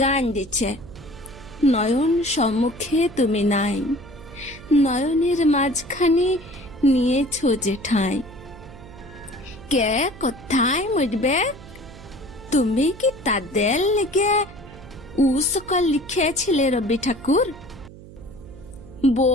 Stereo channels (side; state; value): right; noise; hum, 18 dB below the sound